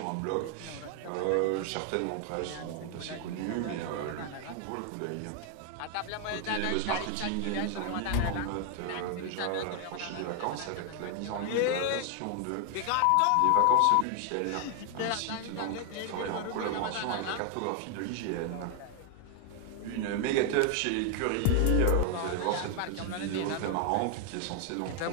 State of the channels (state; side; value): different; both; correlation 0.00